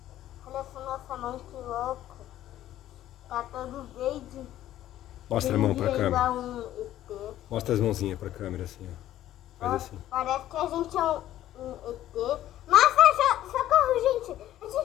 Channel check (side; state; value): right; quieter; 13.0 dB